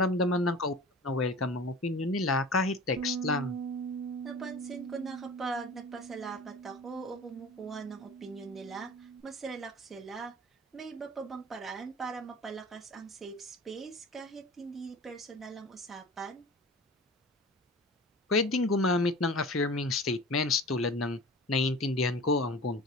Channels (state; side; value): normal; both; correlation 0.39